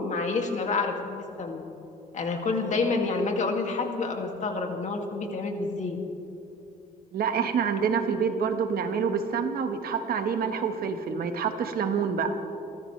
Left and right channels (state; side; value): normal; both; correlation 0.37